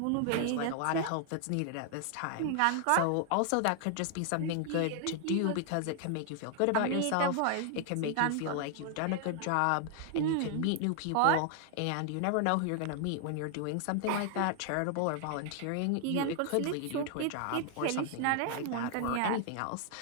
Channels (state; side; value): different; both; correlation 0.00